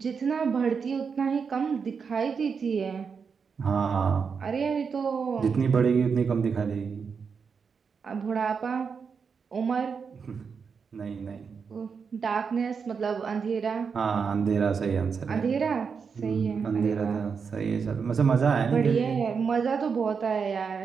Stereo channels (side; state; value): left; quieter; 5.9 dB